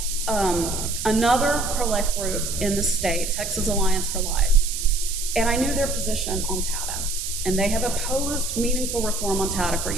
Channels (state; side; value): noise; right; hiss, 5 dB below the sound